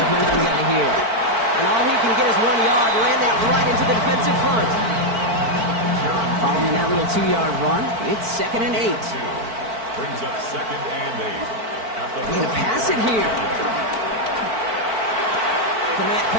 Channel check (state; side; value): late; left; 4.5 ms